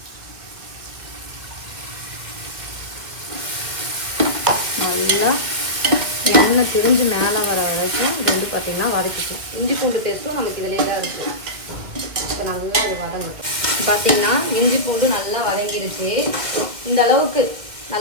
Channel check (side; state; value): left; late; 1.8 ms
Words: நல்லா எண்ணெய் திரிஞ்சு மேலே வர வரைக்கும் இது வந்து பார்த்திங்கன்னா வதக்கிக்கலாம். இஞ்சி பூண்டு பேஸ்ட்டும் நமக்கு இதிலே தான் இருக்குது. இப்போ நல்லா இது வதங்கட்டும். பார்த்திங்கன்னா இஞ்சி பூண்டு நல்லா வதங்கிடுச்சு. இந்த அளவுக்கு